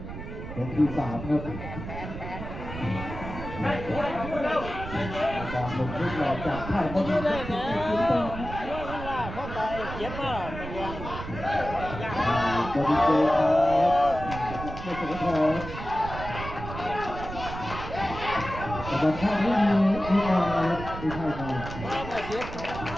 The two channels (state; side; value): noise; right; rumble, 9 dB below the sound